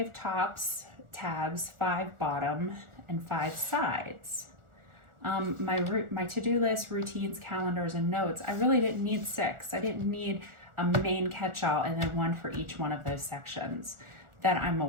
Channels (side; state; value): left; late; 1.4 ms